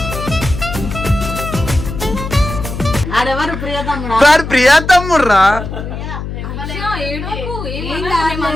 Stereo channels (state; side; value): noise; left; hum, 7 dB below the sound